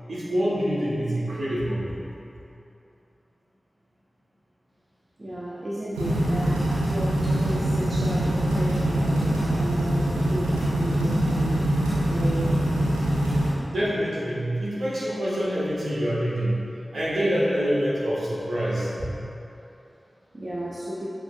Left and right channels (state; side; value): normal; both; correlation 0.93